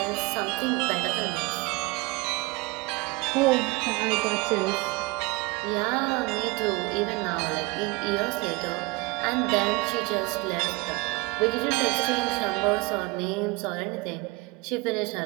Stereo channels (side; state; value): left; quieter; 23.6 dB